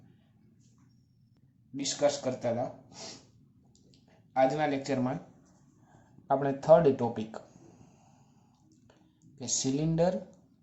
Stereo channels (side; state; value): both; identical; correlation 1.00